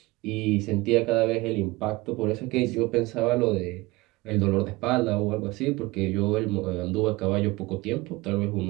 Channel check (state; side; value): quieter; left; 21.7 dB